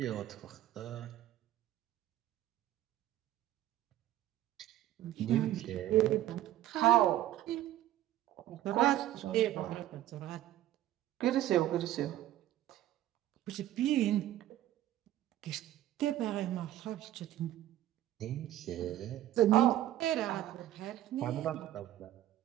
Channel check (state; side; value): quieter; left; 13.4 dB